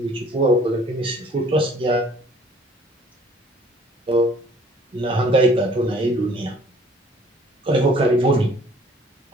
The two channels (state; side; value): normal; both; correlation 0.55